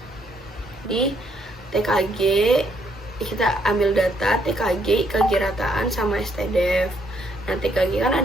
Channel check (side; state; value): both; normal; correlation 0.71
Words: di TKG, kita ambil data TKG, IKG rataan sama STDEF. Nah, TKG kan